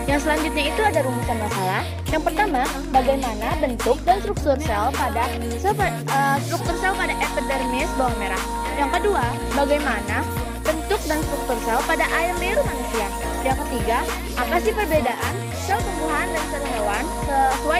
Yang selanjutnya itu ada rumusan masalah. Yang pertama, bagaimana bentuk dan struktur sel pada epidermis bawang merah. Yang kedua, bagaimana bentuk dan struktur sel pada air liur manusia. Yang ketiga, apa sih perbedaan sel tumbuhan dan sel hewan sesuai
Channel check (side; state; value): both; identical; correlation 1.00